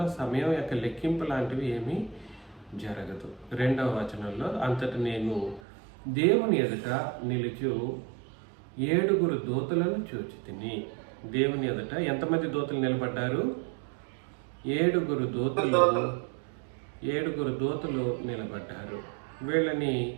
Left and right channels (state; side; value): drops out; left; at 5.6 s